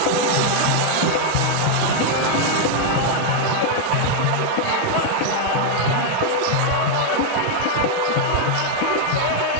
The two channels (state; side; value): different; both; correlation 0.00